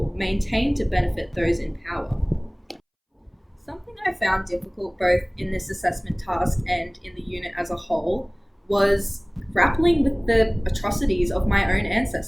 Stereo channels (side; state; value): both; identical; correlation 1.00